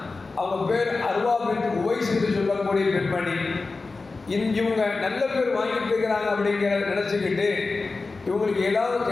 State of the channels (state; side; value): quieter; right; 3.8 dB